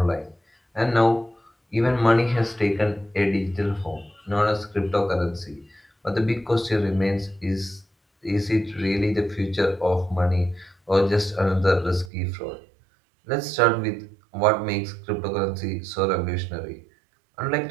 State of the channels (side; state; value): left; drops out; at 12.1 s